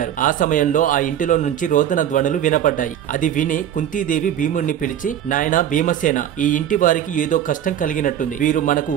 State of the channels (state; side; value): quieter; left; 10.2 dB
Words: ఆ సమయంలో ఆ ఇంటిలో నుంచి రోదన ధ్వనులు వినపడ్డాయి. అది విని కుంతీదేవి భీముడిని పిలిచి, నాయనా భీమసేన, ఈ ఇంటి వారికి ఏదో కష్టం కలిగినట్టుంది. వీరు మనకు